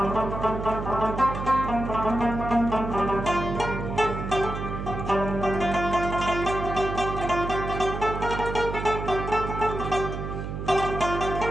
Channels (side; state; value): right; noise; hum, 6 dB below the sound